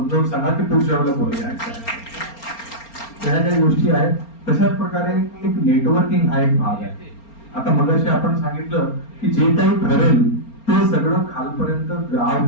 सांगा की पुढच्या वेळेला बोलूया. त्या काही गोष्टी आहेत. तशाच प्रकारे एक नेटवर्किंग हा एक भाग आहे. आता मगाशी आपण सांगितलं की जे काही ठरेल ते सगळं खालपर्यंत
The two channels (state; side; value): late; right; 4.3 ms